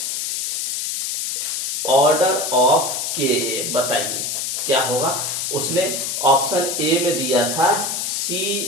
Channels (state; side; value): noise; left; hiss, 1 dB below the sound